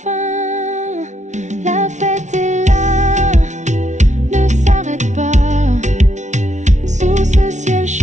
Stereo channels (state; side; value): late; left; 0.34 ms